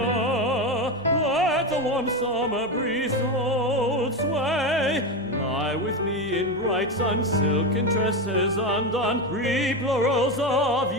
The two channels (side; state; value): right; noise; hum, 27 dB below the sound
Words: Let the warm summer breeze hold sway. Lie with me in bright sun, silken tresses undone. Reap laurels of